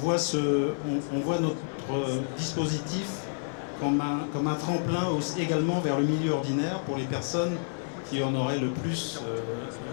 notre dispositif comme un tremplin également vers le milieu ordinaire pour les personnes qui en auraient le plus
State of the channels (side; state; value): right; silent; digital silence